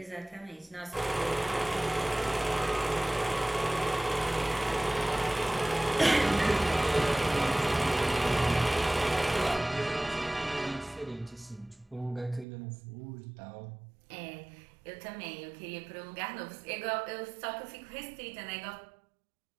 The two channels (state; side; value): drops out; left; at 12.5 s